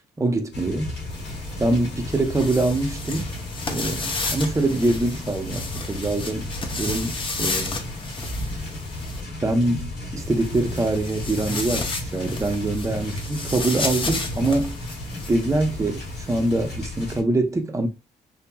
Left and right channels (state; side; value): normal; both; correlation 0.74